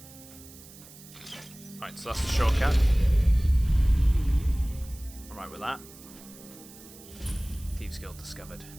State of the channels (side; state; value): right; noise; hiss, 20 dB below the sound